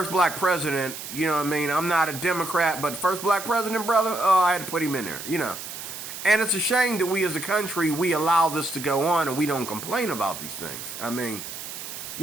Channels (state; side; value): noise; right; hiss, 9 dB below the sound